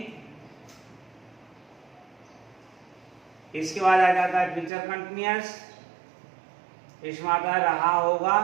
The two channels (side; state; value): left; drops out; at 4.7 s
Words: इसके बाद आ जाता है फ्यूचर कंटिन्यूअस, इसमें आता है रहा